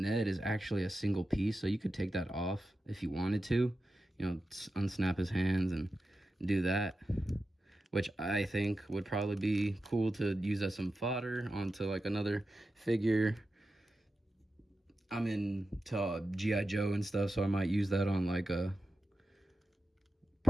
Ned is actually a single piece, so you could take that off if you wanted to. You know, unsnap his hands and do that, which I think would probably be cool to use as some fodder onto like another figure. I'm into G.I. Joe and stuff, so I might use that on like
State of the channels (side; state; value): both; normal; correlation 0.91